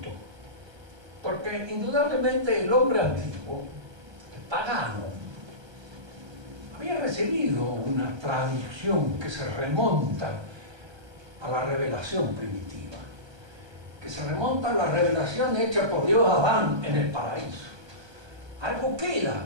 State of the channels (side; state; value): left; late; 1.2 ms